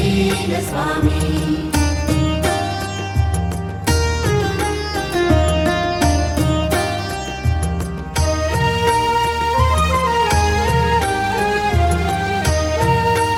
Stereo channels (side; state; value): both; identical; correlation 1.00